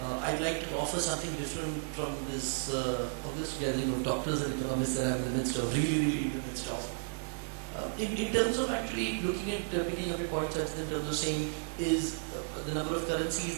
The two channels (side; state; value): left; silent; digital silence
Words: I'd like to offer something different from this August gathering of doctors and economists that I'm in the midst of, really in the midst of. In terms of actually looking at picking up your points, in terms of saying is the number of